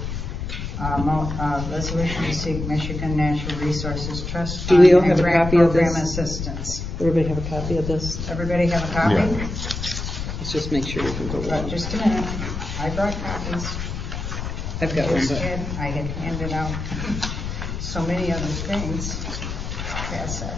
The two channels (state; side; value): noise; left; rumble, 5 dB below the sound